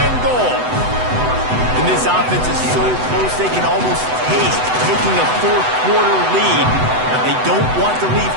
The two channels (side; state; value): left; late; 8.0 ms